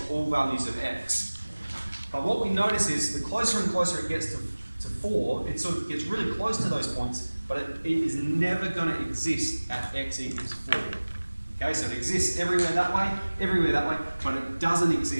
all values of x. But what we notice is the closer and closer it gets to 4, it sort of gets really close to those points, but it is never going to exist at x equals 4. Okay, so it exists everywhere that way, but it doesn't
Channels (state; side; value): inverted; both; correlation -1.00